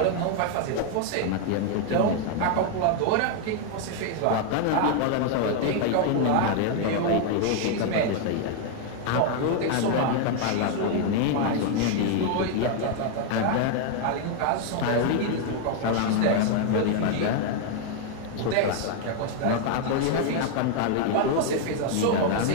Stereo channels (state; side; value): different; both; correlation 0.00